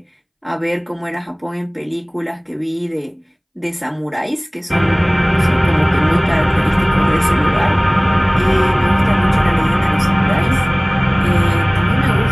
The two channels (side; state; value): both; identical; correlation 1.00